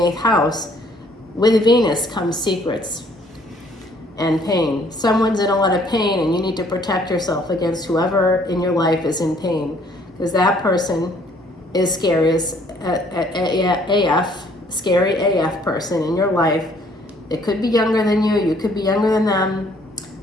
house, with Venus comes secrets and pain. Someone's in a lot of pain, and you need to protect yourself against whoever in your life is in pain, because that person is scary as AF, scary AF person in your life. It could be younger than you. You could be younger than them.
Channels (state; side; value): normal; both; correlation 0.62